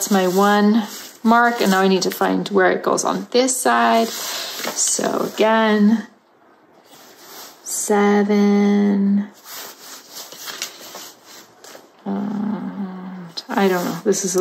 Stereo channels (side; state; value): both; identical; correlation 1.00